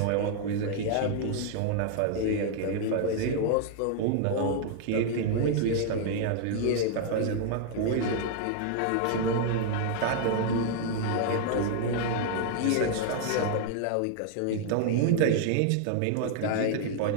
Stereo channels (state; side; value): different; both; correlation 0.00